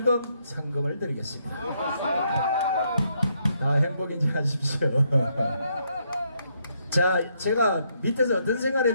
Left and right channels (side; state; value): both; inverted; correlation -0.75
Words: 상금을 드리겠습니다. 다 행복인지 하십시오. 자, 제가 밑에서 어떤 생각을